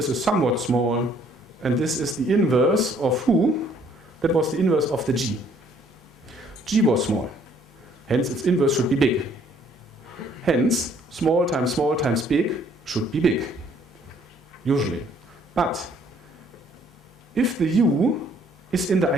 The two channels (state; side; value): normal; both; correlation 0.62